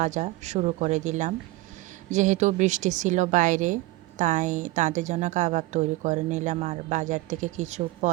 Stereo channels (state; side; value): quieter; left; 19.4 dB